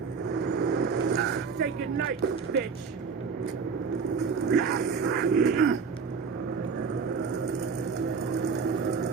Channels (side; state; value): left; quieter; 5.5 dB